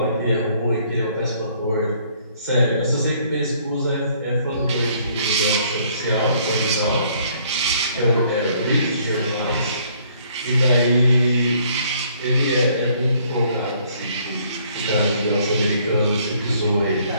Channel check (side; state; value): both; inverted; correlation -0.63